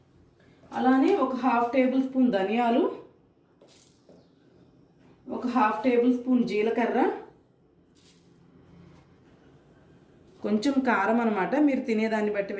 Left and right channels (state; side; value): identical; both; correlation 1.00